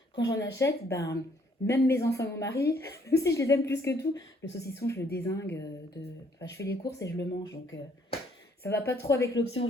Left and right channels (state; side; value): normal; both; correlation 0.65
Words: quand j'en achète, ben, même mes enfants et mon mari, même si je les aime plus que tout, le saucisson, je le dézingue. Enfin, je fais les courses et je le mange. Donc, ça va pas trop avec l'option